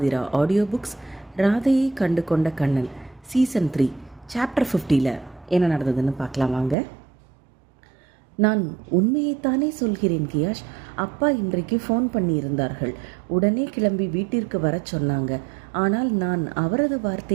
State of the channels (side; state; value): left; drops out; at 6.8 s